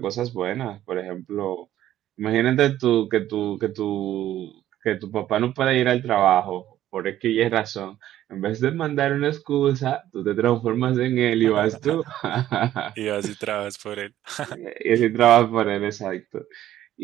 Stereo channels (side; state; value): left; quieter; 12.8 dB